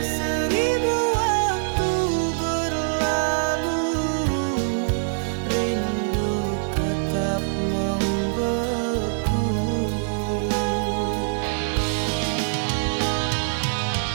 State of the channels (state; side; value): silent; left; digital silence